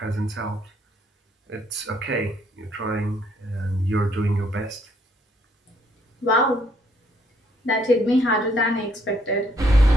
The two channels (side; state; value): both; normal; correlation 0.68